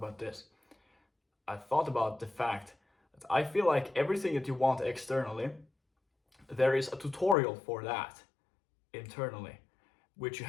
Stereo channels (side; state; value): right; drops out; at 7.4 s